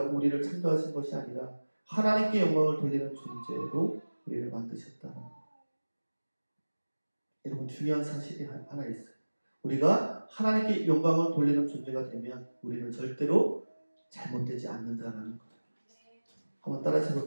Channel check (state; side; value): inverted; both; correlation -1.00